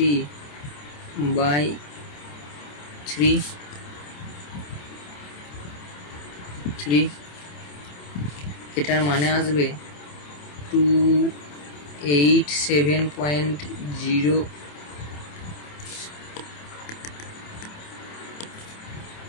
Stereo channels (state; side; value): late; right; 27 ms